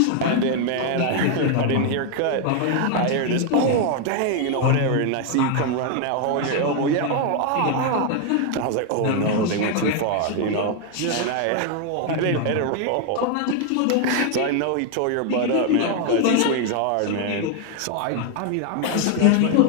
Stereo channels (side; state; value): both; different; correlation 0.01